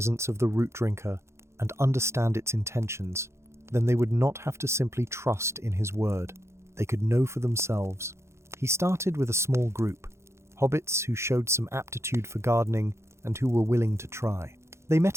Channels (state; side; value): late; left; 0.13 ms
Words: of the root drinker and understand its intentions, then they would not have to simply trust in his word. They could know for themselves. He started with a small group, hobbits who showed some aptitude for gardening and who were willing to try. They